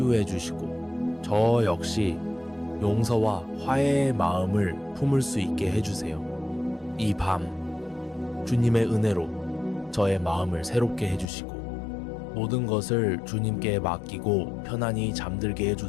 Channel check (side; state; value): right; drops out; at 11.3 s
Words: 주시고 저 역시 용서와 화해의 마음을 품을 수 있게 해주세요. 이 밤 주님의 은혜로 저의 마음을 새롭게 해주시고 모든 것을 주님께 맡기고 편안히 잠들게